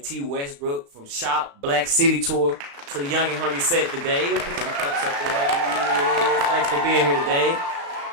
Tee Westbrook from Shop Black City Tour to the Young and Hungry set today. Put them cups up there. Thanks for being here today.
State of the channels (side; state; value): left; late; 35 ms